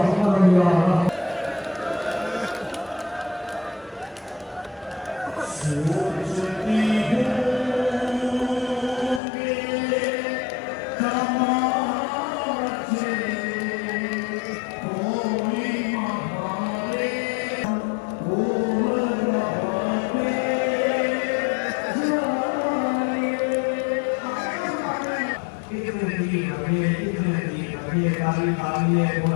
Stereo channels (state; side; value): drops out; right; at 9.2 s